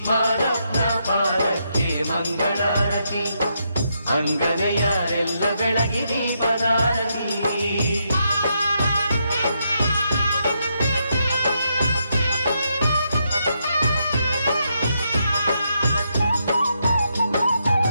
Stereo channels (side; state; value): both; inverted; correlation -0.80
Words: ಮಾದಪ್ಪನ ಪಾದಕ್ಕೆ ಮಂಗಳಾರತಿ ಅಂಗನ ಯಾರೆಲ್ಲ ಬೆಳಗಿ ದೀಪದಾರತಿ